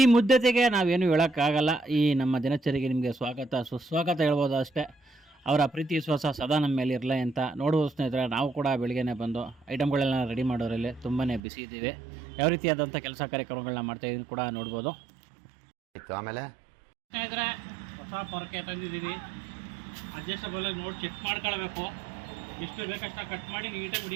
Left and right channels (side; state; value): left; drops out; at 11.4 s